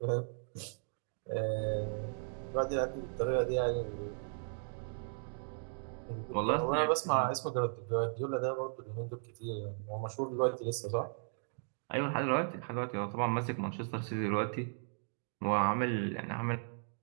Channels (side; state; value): left; silent; digital silence